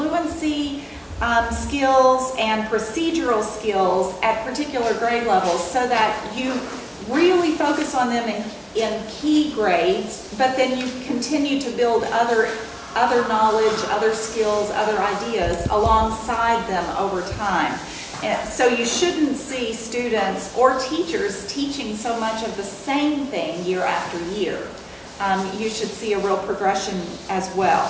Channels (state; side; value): identical; both; correlation 1.00